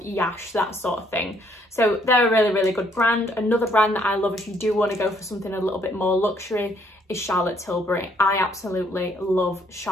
that sort of thing. So they're a really good brand. Another brand that I love if you do want to go for something a little bit more luxury is Charlotte Tilbury. I absolutely love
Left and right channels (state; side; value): normal; both; correlation 0.67